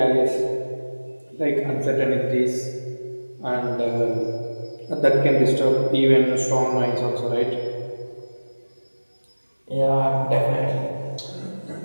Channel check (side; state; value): both; inverted; correlation -1.00